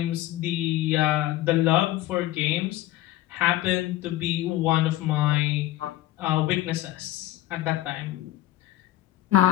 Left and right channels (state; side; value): quieter; right; 15.1 dB